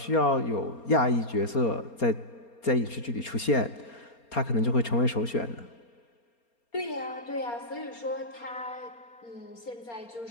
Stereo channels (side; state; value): right; late; 4.3 ms